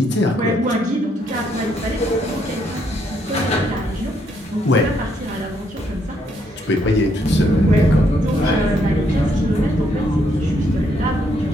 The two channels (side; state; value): both; normal; correlation 0.73